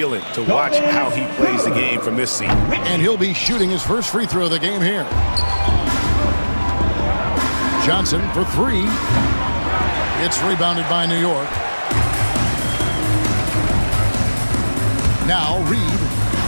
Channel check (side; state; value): both; inverted; correlation -1.00